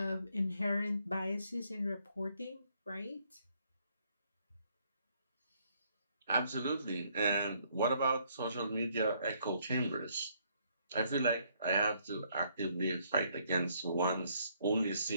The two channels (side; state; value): both; inverted; correlation -0.69